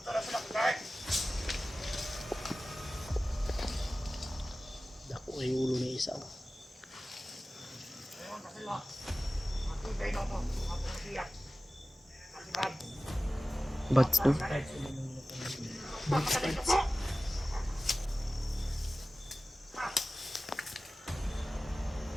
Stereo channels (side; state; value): both; normal; correlation 0.96